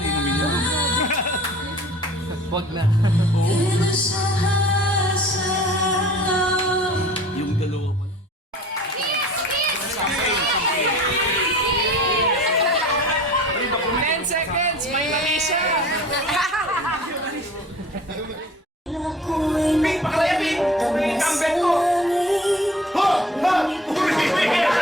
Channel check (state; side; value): normal; both; correlation 0.45